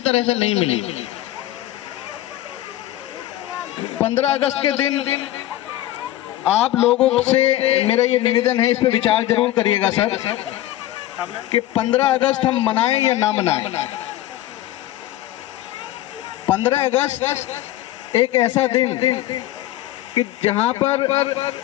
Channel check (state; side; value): quieter; right; 14.7 dB